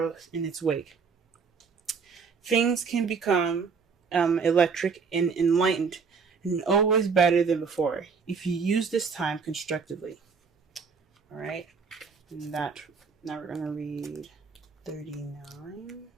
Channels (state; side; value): quieter; left; 5.5 dB